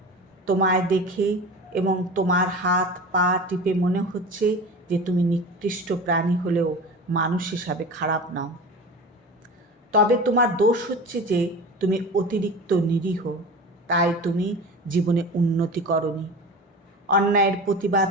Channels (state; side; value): normal; both; correlation 0.33